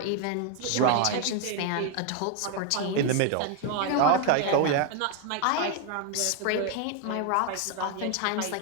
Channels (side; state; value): both; different; correlation 0.01